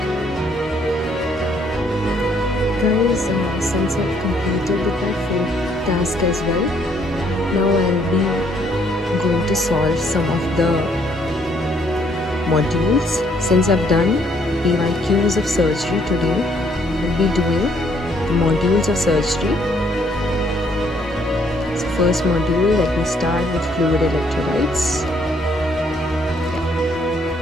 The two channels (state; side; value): normal; both; correlation 0.67